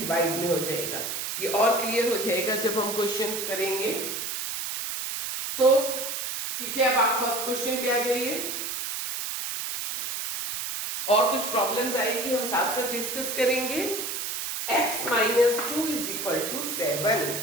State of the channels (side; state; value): right; noise; hiss, 4 dB below the sound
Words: में हो जाएगा। ये और क्लियर हो जाएगा जब हम क्वेश्चन करेंगे। सो ठीक है, अब आप फर्स्ट क्वेश्चन पे आ जाइए। और कुछ प्रॉब्लम्स आएगी, हम साथ साथ डिस्कस करेंगे। x minus 2 is equal to 7.